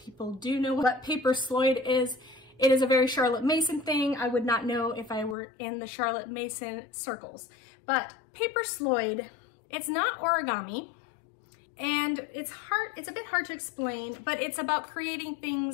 do know what paper Sloyd is. It is a very Charlotte Mason thing. I would not know if I were in the Charlotte Mason circles. But paper Sloyd, it's not origami, and it's a bit hard to explain, but it's about creating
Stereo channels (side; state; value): right; drops out; at 5.4 s